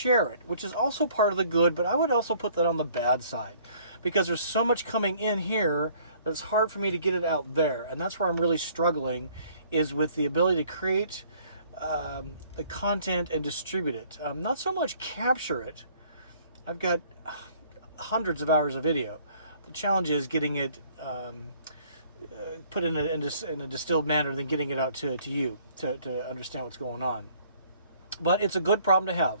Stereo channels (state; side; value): inverted; both; correlation -0.59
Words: it, which is also part of the good, but I would also put that on the bad side, because there's so much coming in here that it's hard for me to get it out there. And that's where I'm really struggling, is with the ability to create the content and distribute it. Not so much capture it. I've got hundreds of hours of video. The challenge is getting it put in a distilled manner, then getting it out to you to understand what's going on. But it's a good problem to